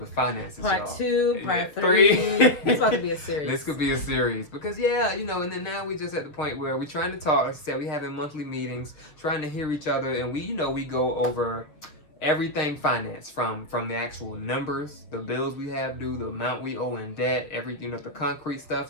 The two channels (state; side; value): late; right; 6.6 ms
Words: finances. Part 2, part 3. It's about to be a series. This could be a series because you know, and then now we just at the point where we're trying to talk. Like I said, we having monthly meetings, trying to hear each other, and we go over everything finance from the actual numbers, the bills we have due, the amount we owe in debt, everything, the concrete stuff,